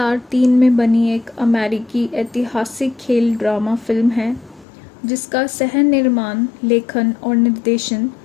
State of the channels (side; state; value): right; drops out; at 4.7 s